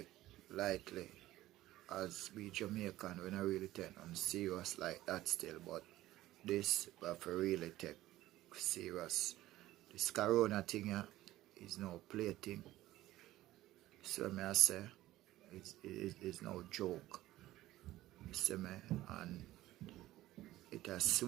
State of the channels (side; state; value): left; quieter; 15.7 dB